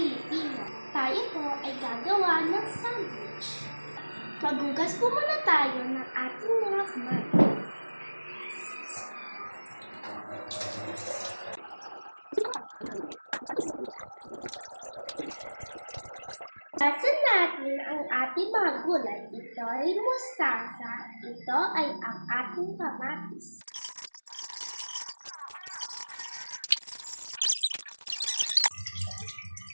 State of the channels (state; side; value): inverted; both; correlation -1.00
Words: Tayo po ay gagawa ng sandwich. Maghugas po muna tayo ng ating mga kamay. Lasan natin ang ating mga gulay. Ito ay mustasa. Ito ay ang ating kamatis.